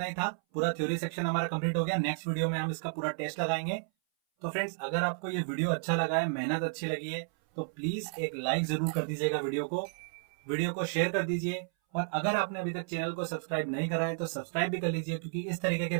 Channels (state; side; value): silent; left; 56 dB below the other